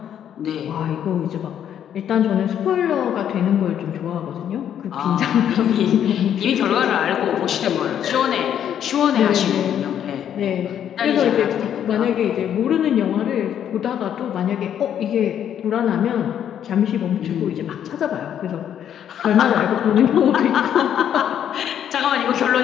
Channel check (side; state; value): right; quieter; 9.6 dB